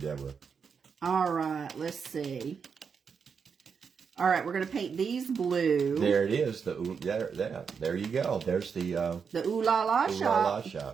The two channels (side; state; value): left; quieter; 6.2 dB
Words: All right, let's see. All right, we're going to paint these blue. There it is. There you go. There's the Ooh La La shop.